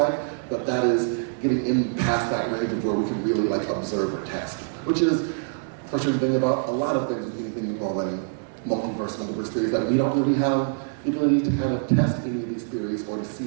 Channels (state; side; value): silent; left; 61 dB below the other